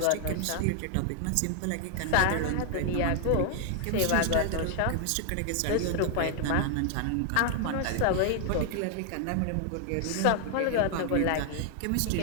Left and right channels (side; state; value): both; different; correlation 0.00